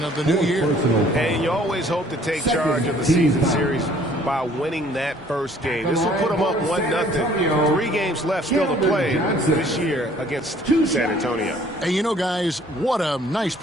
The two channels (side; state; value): both; normal; correlation 0.57